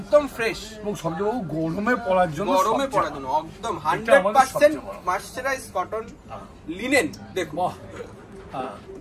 ফ্রেশ। এবং সবচেয়ে বাবু গরমে পরার জন্য, একদম 100% মার্সারাইজ কটন লিনেন। দেখো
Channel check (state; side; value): identical; both; correlation 1.00